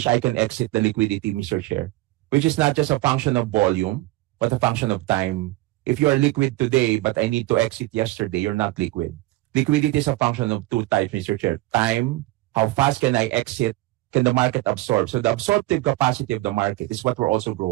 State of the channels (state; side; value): quieter; left; 18.6 dB